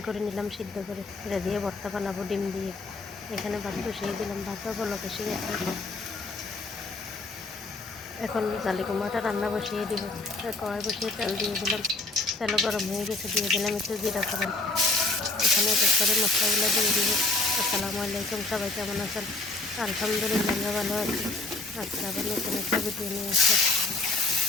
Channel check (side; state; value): right; quieter; 3.3 dB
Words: করে নিলাম, সিদ্ধ করে এটা দিয়ে ভর্তা বানাবো ডিম দিয়ে। এখানে ভাত বসিয়ে দিলাম, ভাতটা বলক এসে গেছে। এখন জালি কুমড়াটা রান্না বসিয়ে দিব। কড়াই বসিয়ে তেল দিয়ে দিলাম, তেল গরম হয়ে গেছে, দিয়ে দিলাম একটু জিরা ফোড়ন। এখানে এক এক করে মশলাগুলো দিয়ে দিব। আসসালামু আলাইকুম, সবাই কেমন আছেন? আলহামদুলিল্লাহ আমরা ভালো আছি। আজকে আবার নতুন একটা ভিডিও নিয়ে আসলাম।